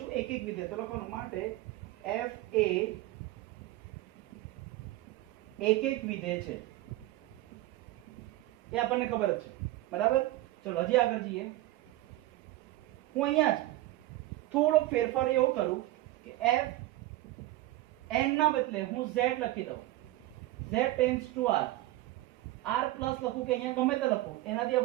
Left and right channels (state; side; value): quieter; left; 16.9 dB